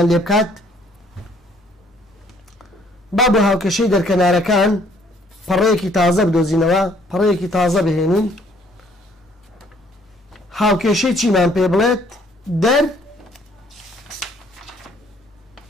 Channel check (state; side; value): normal; both; correlation 0.62